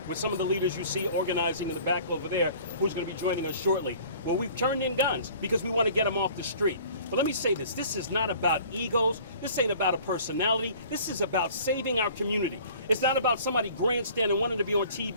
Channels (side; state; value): both; inverted; correlation -0.49